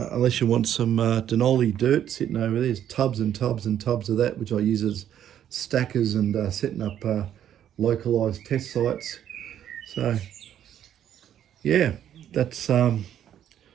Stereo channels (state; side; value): quieter; left; 10.3 dB